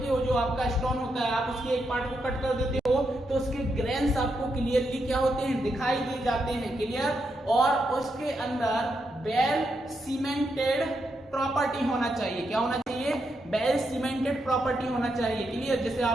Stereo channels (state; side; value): normal; both; correlation 0.82